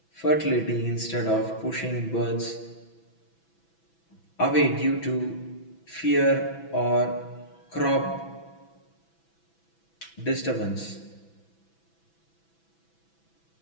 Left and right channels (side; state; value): right; late; 6.0 ms